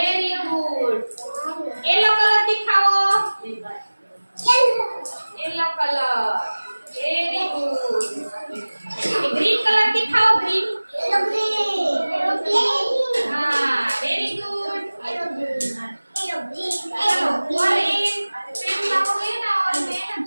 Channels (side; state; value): both; inverted; correlation -1.00